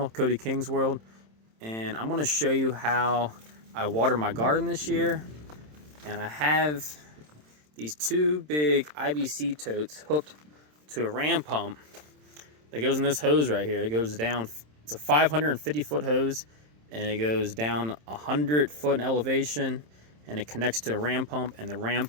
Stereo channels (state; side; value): late; left; 27 ms